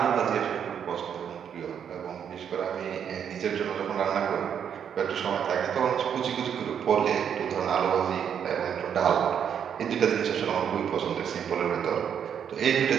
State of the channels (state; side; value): quieter; left; 8.2 dB